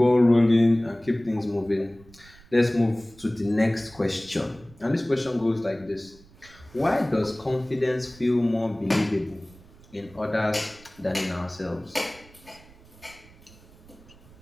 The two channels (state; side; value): noise; right; rumble, 24 dB below the sound